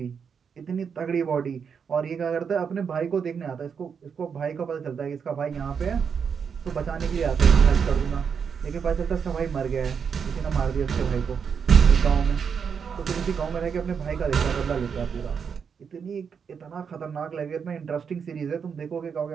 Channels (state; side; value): quieter; left; 6.6 dB